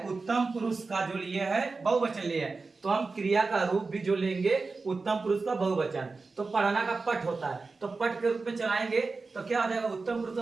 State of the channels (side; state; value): left; quieter; 4.0 dB